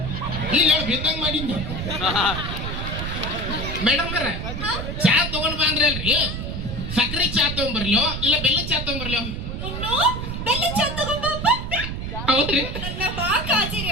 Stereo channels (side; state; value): right; noise; rumble, 5 dB below the sound